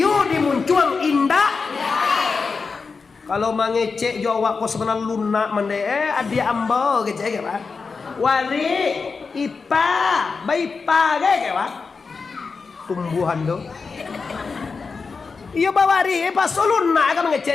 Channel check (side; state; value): right; quieter; 4.8 dB